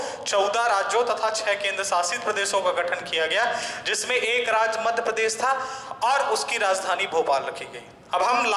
14 राज्यों तथा 6 केंद्र शासित प्रदेशों का गठन किया गया, जिसमें एक राज्य मध्य प्रदेश था और उसकी राजधानी भोपाल रखी गई। अब हम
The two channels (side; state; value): both; identical; correlation 1.00